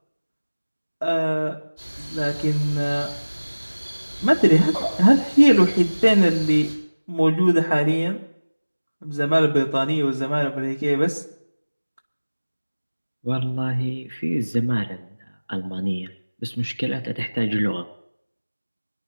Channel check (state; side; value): inverted; both; correlation -1.00